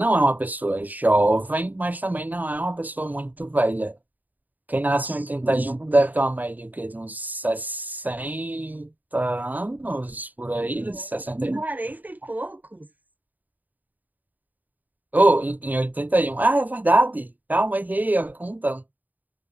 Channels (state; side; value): late; left; 0.083 ms